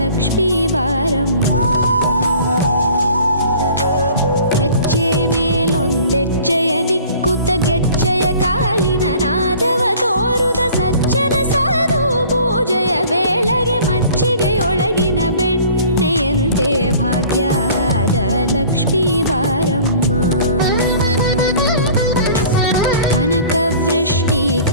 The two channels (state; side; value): inverted; both; correlation -0.48